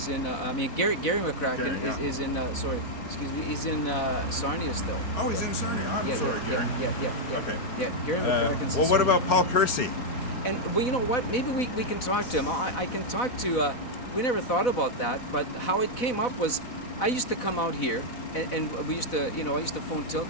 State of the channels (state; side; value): late; right; 4.0 ms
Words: in. I mean, Gary McCracken Gary, is in. Sorry, excuse me. He's in Sarnia still. Oh, he's yeah. in Sarnia. I'm Yeah, sorry, Gary. yeah. Okay. Yeah, Gary McCracken's in Well, what Sarnia. about Paul Kersey? And well, you know what? Maybe we can talk to him. I can talk to. We never thought about that, but how it came up was, I used to come out here, and we used to, you know, I used to phone Till